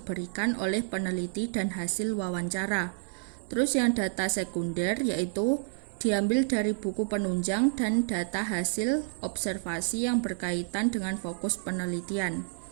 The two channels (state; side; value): silent; left; digital silence